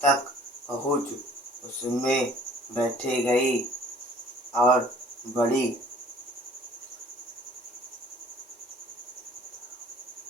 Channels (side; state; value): both; normal; correlation 0.52